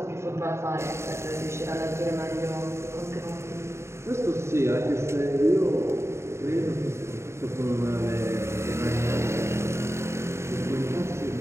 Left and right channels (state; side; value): late; left; 0.13 ms